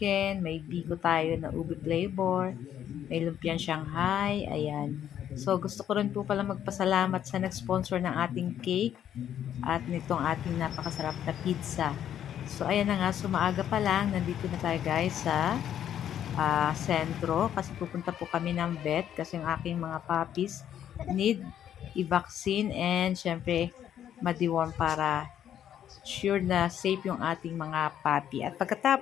may biko tayo na ube flavor, may lumpiang Shanghai, ayan. So, gusto ko rin po pala magpasalamat sa nag-sponsor ng ating cake at nitong ating napakasarap na pizza. So, ayan na nga, sumaaga pa lang, nandito na tayo guys sa sentro kasi pupunta po kami ng vet kasi yung aking mga puppies need i-vaccine and syempre ma-deworm para sure na safe yung ating mga puppy. At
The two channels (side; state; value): right; quieter; 10.2 dB